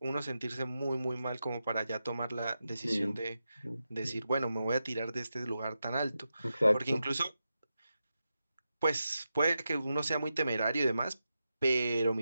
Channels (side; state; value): both; inverted; correlation -0.89